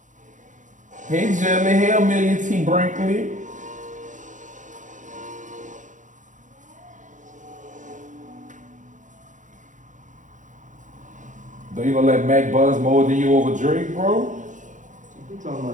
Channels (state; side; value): late; left; 0.36 ms